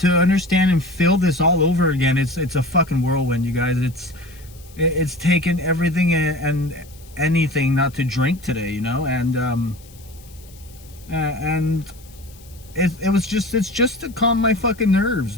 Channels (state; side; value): noise; left; hiss, 24 dB below the sound